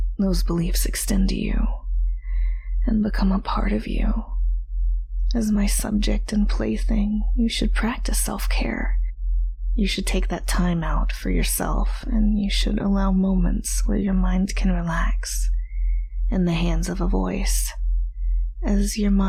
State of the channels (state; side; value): identical; both; correlation 1.00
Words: those beliefs extend to you and become a part of you. As my subject and plaything, you should practice self-care. You should take that time out for yourself, and you should allow moments where your mind can relax in the hands of a voice, as your